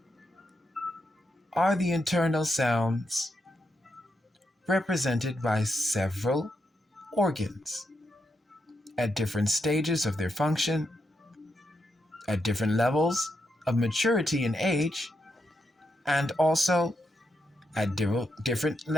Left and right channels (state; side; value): normal; both; correlation 0.83